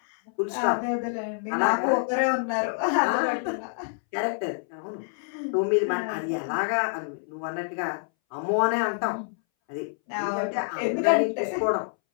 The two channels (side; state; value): right; silent; 60 dB below the other